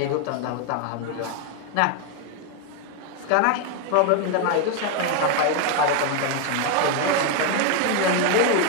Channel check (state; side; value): different; both; correlation 0.01